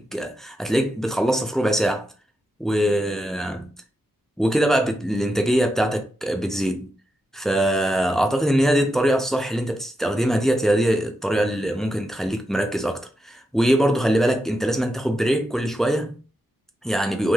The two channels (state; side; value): normal; both; correlation 0.86